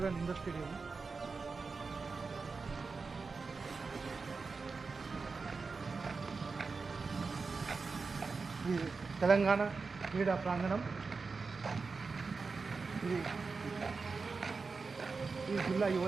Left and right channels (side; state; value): left; quieter; 4.5 dB